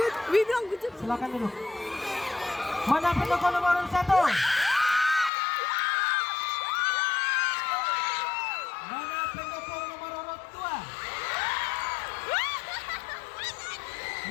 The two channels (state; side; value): drops out; right; at 5.3 s